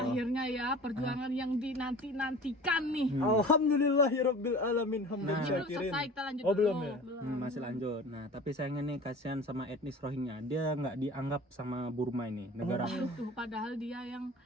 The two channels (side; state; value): both; normal; correlation 0.41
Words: ya perjuangan yang dinanti-nantikan nih. Alhamdulillahirabbil alamin hamdan Nah. Belum syakirin. selesai, kita lanjut Oh, dulu. belum ya? Masih lanjut. Nah tapi sayangnya nih kasihan sama etnis Rohingya, dia nggak dianggap sama Burma ini negara. Tuh, padahal dia yang